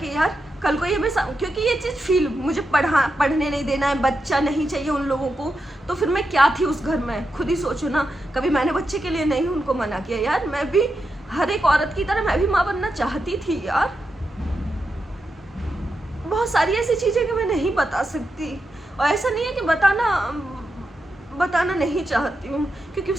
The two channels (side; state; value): both; normal; correlation 0.87